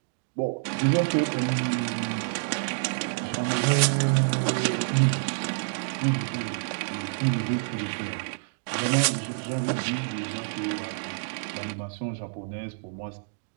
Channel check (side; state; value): left; silent; digital silence